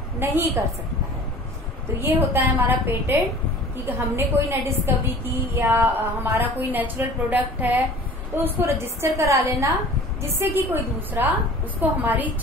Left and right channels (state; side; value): normal; both; correlation 0.44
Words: नहीं कर सकता है। तो ये होता है हमारा पेटेंट, कि हमने कोई नई डिस्कवरी की या हमारा कोई नेचुरल प्रोडक्ट है तो उसको रजिस्टर करा लेना, जिससे कि कोई दूसरा उसको हमारी